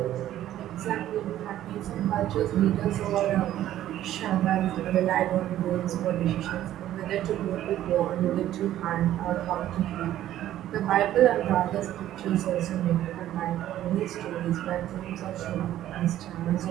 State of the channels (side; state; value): left; quieter; 12.8 dB